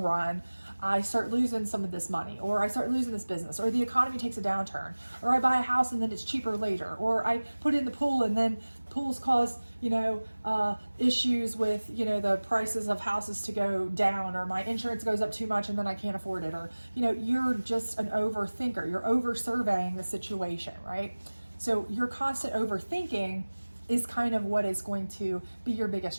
run I start losing some of this money, or I start losing this business, or the economy takes a downturn, or I buy a house and then it's cheaper later, or I put in the pool and then pools cause, issues with, the prices of houses to go down, or my insurance goes up too much and then I can't afford it, or, you're just an overthinker. You're over surveying the situation, right? So your constant overthinking is kind of what is going to be your biggest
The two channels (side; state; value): both; inverted; correlation -1.00